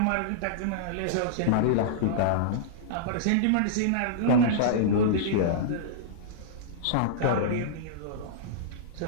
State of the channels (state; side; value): different; both; correlation -0.03